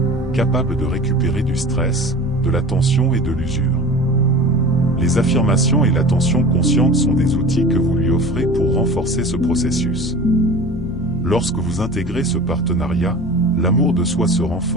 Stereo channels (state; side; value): normal; both; correlation 0.37